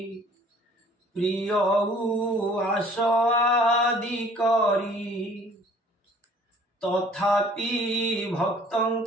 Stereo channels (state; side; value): normal; both; correlation 0.54